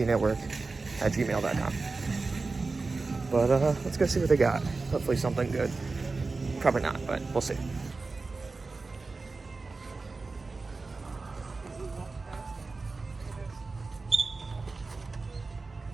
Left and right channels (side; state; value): left; quieter; 3.9 dB